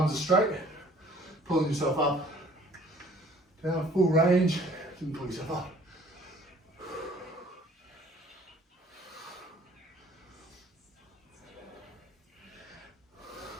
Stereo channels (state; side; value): normal; both; correlation 0.55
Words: are straight, pulling yourself up. Down, full range, and pull yourself up.